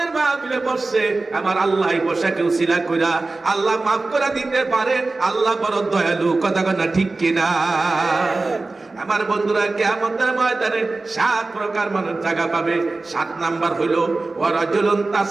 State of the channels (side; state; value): left; quieter; 3.4 dB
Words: মাহফিলে বসছে, আমার আল্লাহ বসাকে উসিলা করে আল্লাহ মাফ করে দিতে পারে। আল্লাহ বড় দয়ালু। কথা কথা ঠিক কিনা? আমার বন্ধুরা, কিয়ামতের ময়দানে 7 প্রকার মানুষ জায়গা পাবে। 7 নাম্বার হইল ওয়ারাজুলুন